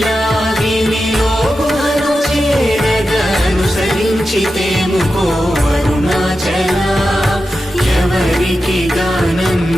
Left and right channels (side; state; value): both; normal; correlation 0.91